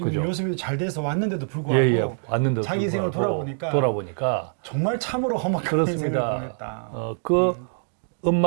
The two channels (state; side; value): silent; left; digital silence